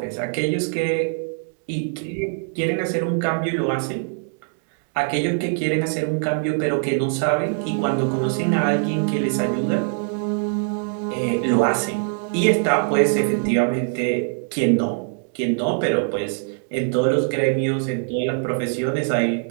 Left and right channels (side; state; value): left; silent; 59 dB below the other